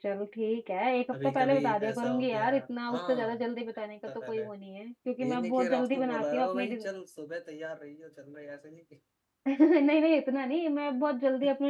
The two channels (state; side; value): identical; both; correlation 1.00